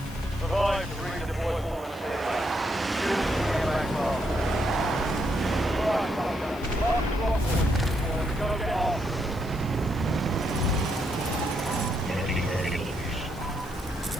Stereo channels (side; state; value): left; noise; hiss, 22 dB below the sound